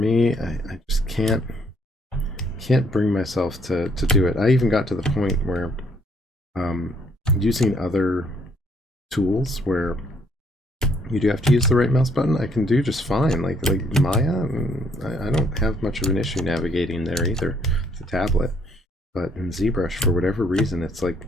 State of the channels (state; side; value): normal; both; correlation 0.67